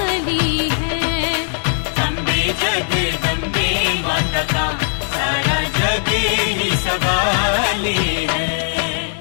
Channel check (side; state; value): right; silent; digital silence